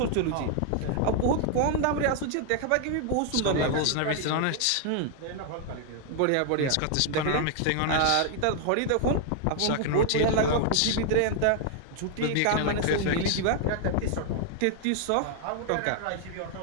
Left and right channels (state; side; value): different; both; correlation 0.00